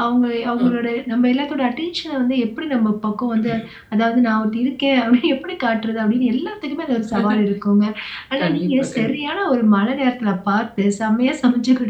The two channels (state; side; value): identical; both; correlation 1.00